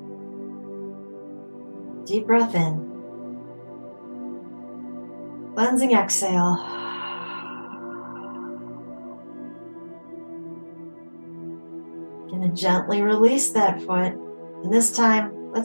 Deep breath in. Cleansing exhale. Gonna gently release that foot. And this time,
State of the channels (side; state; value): both; inverted; correlation -1.00